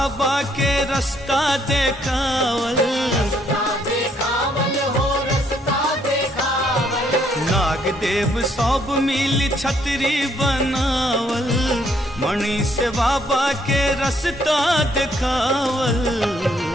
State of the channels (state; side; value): normal; both; correlation 0.69